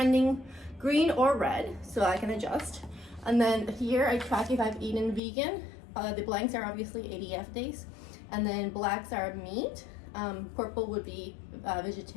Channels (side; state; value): right; drops out; at 5.2 s